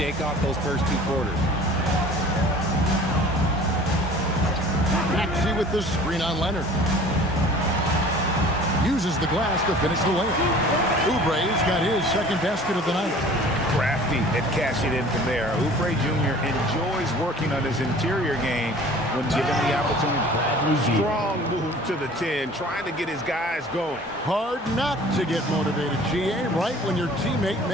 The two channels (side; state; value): both; normal; correlation 0.47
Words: off those first two quarters. Maxey with the screen on Leonard. Uses the glass to finish the layup. Oubre's got his second basket of the night. Crafty at cashing in from there. Oubre Jr. enjoys working on his interior game when given the opportunity. Strong move to the 10, trying to get his guys going. Hard not to get motivated, GA, right when your teammate